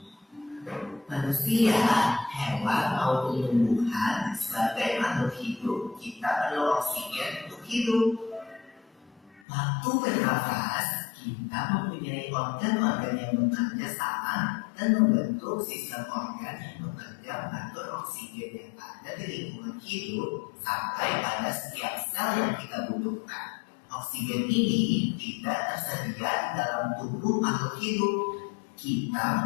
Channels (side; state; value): right; drops out; at 9.4 s